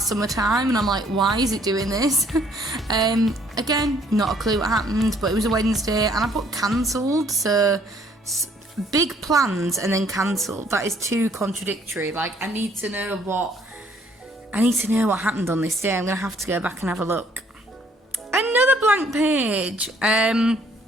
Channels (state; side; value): normal; both; correlation 0.63